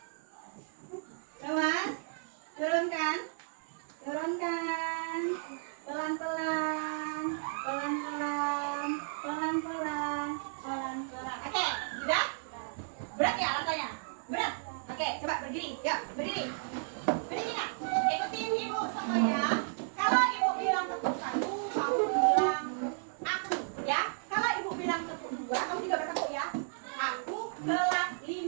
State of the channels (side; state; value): left; silent; 55 dB below the other